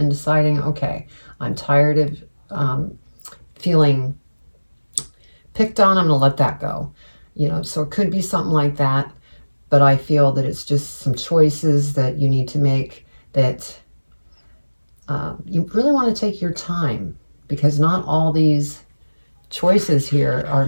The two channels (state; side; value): inverted; both; correlation -1.00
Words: deciding, okay, I'm tired of feeling picked on. I'm going to let that go. So it could be something like that. But I feel that it's just some choices that you need to make that you really want to take your time, because not all these choices here are